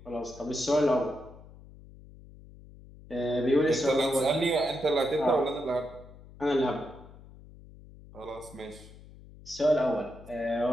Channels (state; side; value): noise; left; hum, 20 dB below the sound